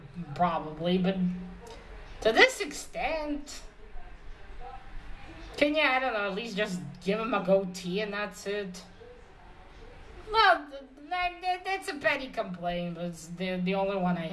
probably, but to this extent, can you, I don't know, at least just give him a goatee and that's it? Well, that's a petty complaint, but it's the only one I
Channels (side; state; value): both; identical; correlation 1.00